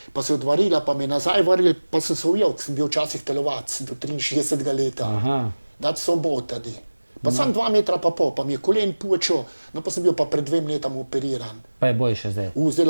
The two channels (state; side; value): inverted; both; correlation -1.00